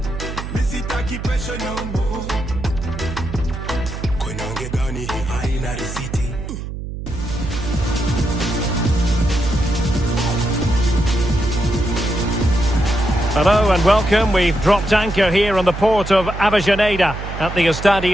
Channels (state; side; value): noise; right; hum, 8 dB below the sound